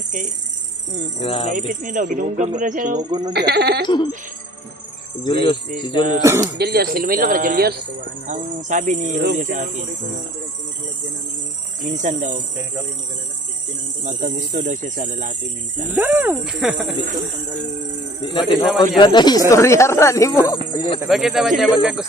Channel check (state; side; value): normal; both; correlation 0.52